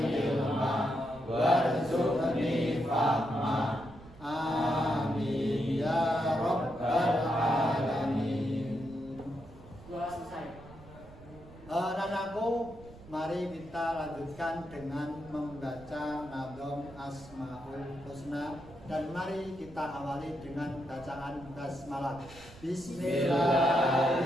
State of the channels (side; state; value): right; noise; rumble, 19 dB below the sound